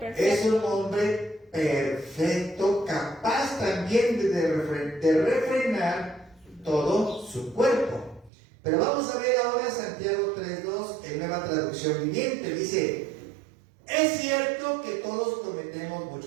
un hombre perfecto, capaz también de refrenar todo su cuerpo. Pero vamos a ver ahora Santiago 3:2 en Nueva Traducción Viviente. Dice, es cierto que todos cometemos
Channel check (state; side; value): drops out; left; at 8.3 s